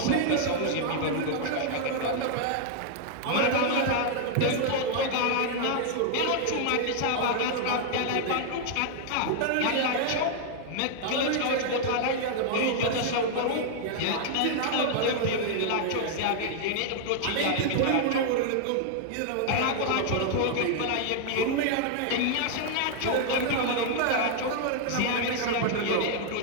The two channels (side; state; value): both; different; correlation 0.00